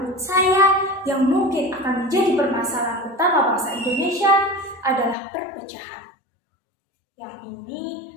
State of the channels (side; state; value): right; drops out; at 5.2 s